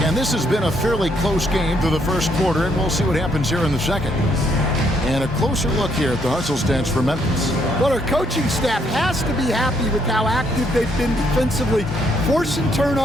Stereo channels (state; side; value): normal; both; correlation 0.72